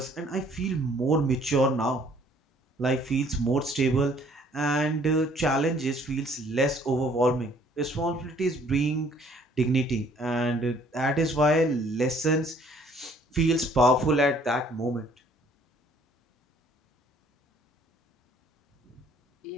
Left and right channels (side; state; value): both; normal; correlation 0.59